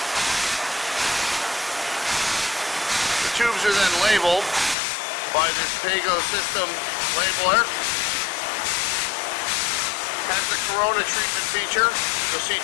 Tubes are then labeled by this Pago system labeler. Has the Corona treatment feature. You'll see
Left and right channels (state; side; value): drops out; right; at 4.8 s